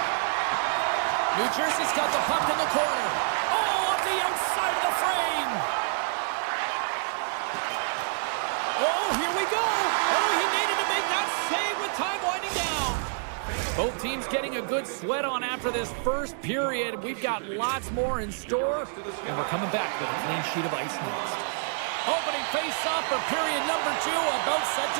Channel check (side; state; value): left; silent; 58 dB below the other